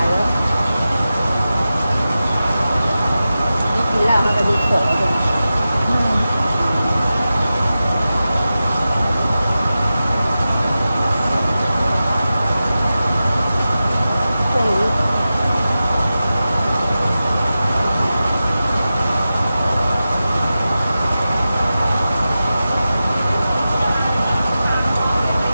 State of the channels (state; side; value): inverted; both; correlation -0.93